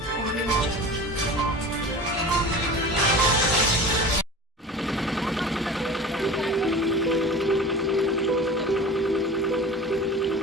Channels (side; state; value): both; normal; correlation 0.36